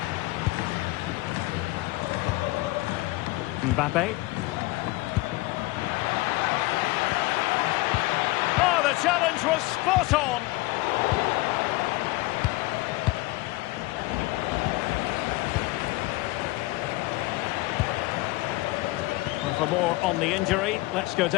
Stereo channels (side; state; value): right; quieter; 20.8 dB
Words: Mbappe. Oh, the challenge was spot on. For more on the injury, let's go